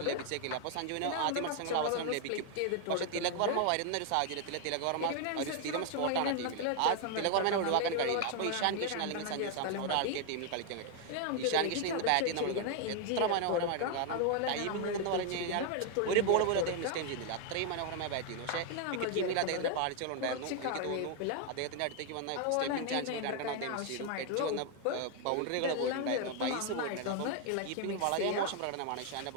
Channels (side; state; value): both; different; correlation 0.00